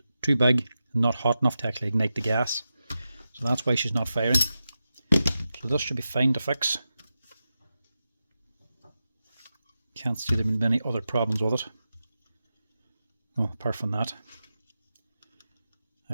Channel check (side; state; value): both; inverted; correlation -0.91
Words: too big and not hot enough to actually ignite the gas. So that's why she's not firing. So this should be fine to fix. Can't see there being many other problems with it. Oh, apart from that.